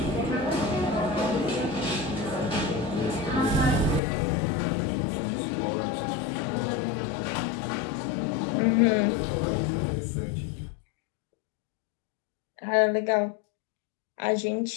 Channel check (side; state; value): right; drops out; at 4.0 s